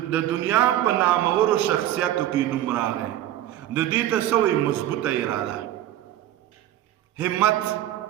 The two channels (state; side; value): quieter; left; 12.7 dB